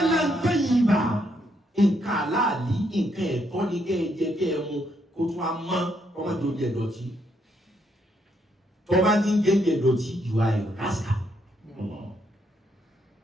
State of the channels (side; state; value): both; normal; correlation 0.75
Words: tayyiba. Nǹkan aláàlí, nǹkan ẹ̀tọ́ ni kẹ́ ẹ jẹ kẹ́ ẹ mu kó tún á mọ́ ọmọ tó jẹ dọ̀tí. Tó bá ti ń jẹ dọ̀tí you are a rascal.